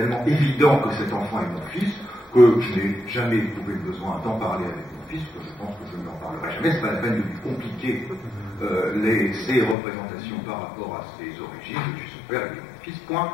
évident que cet enfant est mon fils, que je n'ai jamais éprouvé le besoin d'en parler avec mon fils, que je pense que je n'en parlerai jamais, c'est pas la peine de lui compliquer ses représentations par rapport à ses origines, je suis son père et mon fils, point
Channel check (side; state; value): right; drops out; at 9.8 s